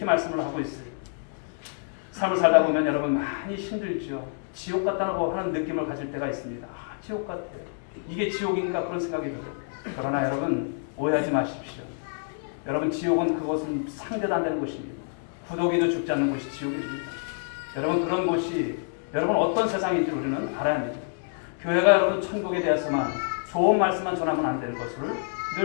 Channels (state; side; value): silent; right; 60 dB below the other